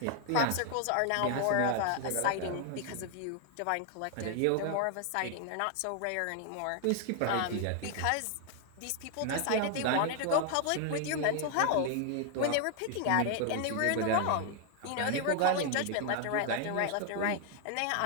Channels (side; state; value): both; different; correlation 0.00